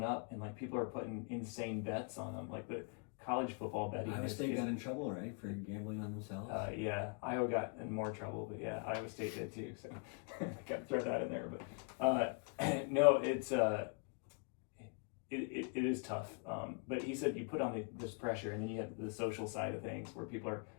up, and like people are putting insane bets on them. Like the college football betting. Iowa State got in trouble, right, for gambling on themselves? Yeah, Iowa got in more trouble, but yeah, Iowa State did too. So got to throw that in there. But no, it's it is tough. But he said you put on this pressure, and then you have the social side of things where people are,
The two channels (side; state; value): right; quieter; 38.1 dB